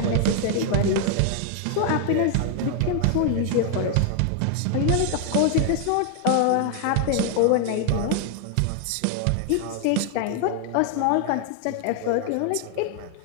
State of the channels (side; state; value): both; different; correlation 0.00